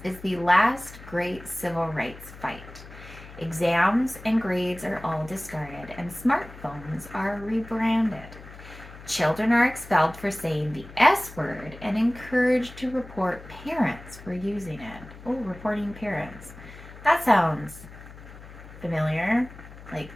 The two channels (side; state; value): left; noise; hum, 17 dB below the sound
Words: is the last great civil rights fight. Exams and grades are all discarded, and smartphones are rebranded. Children are expelled for saying the S word and encouraged to report parents for using it. Oh, reporting parents. That sounds familiar, like